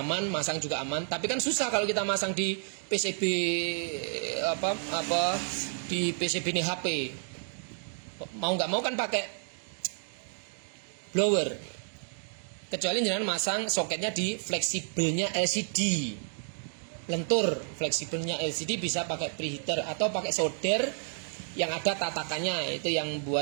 aman, masang juga aman. Tapi kan susah kalau kita masang di PCB di PCB ini HP. Mau nggak mau kan pakai blower. Kecuali jenengan masang soketnya di fleksibelnya LCD. Lentur fleksibelnya LCD bisa pakai preheater atau pakai solder yang ada tatakannya. Itu yang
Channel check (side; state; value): left; silent; 57 dB below the other